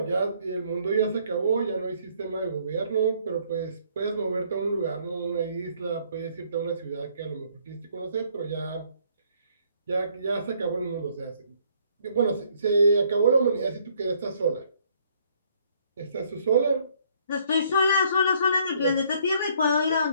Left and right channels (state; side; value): inverted; both; correlation -0.65